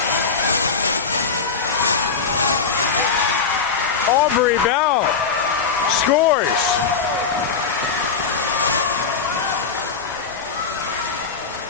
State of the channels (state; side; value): quieter; right; 5.4 dB